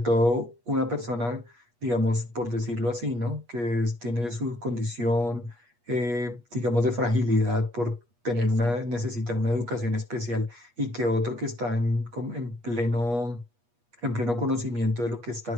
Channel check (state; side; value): late; left; 8.4 ms